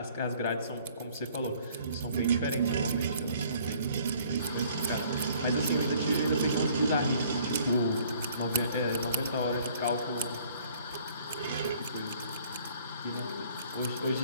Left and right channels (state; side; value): inverted; both; correlation -0.58